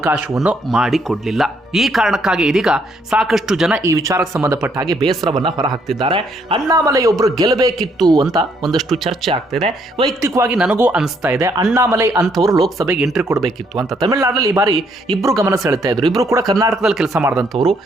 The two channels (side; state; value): both; normal; correlation 0.70